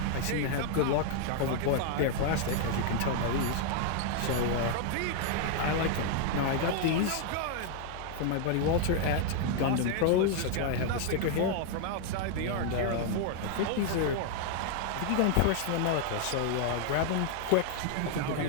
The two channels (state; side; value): different; both; correlation 0.00